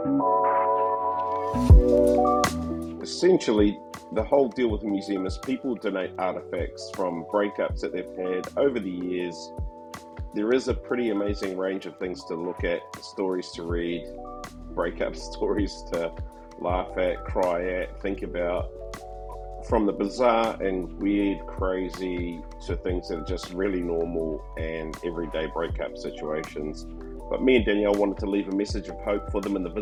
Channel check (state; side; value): identical; both; correlation 1.00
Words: sad. Essentially, the whole deal with the museum is people donate artifacts from breakups that they've had over the years. There is a pretty amazing range of things to look at, stories to read, breakup stories to laugh at, cry at, think about, from the bizarre and weird, crazy to things that are just really normal and everyday breakup situations. But me and Danielle wanted to leave a message of hope for them in the